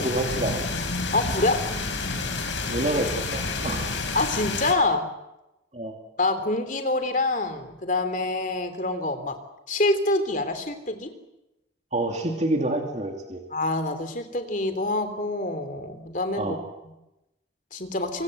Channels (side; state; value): both; normal; correlation 0.05